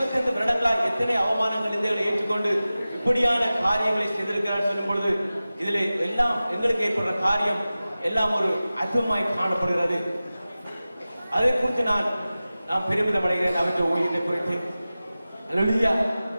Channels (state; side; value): inverted; both; correlation -0.96